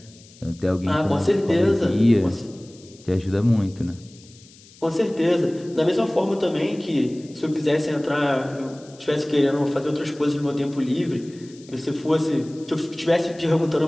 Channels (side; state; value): left; noise; hiss, 24 dB below the sound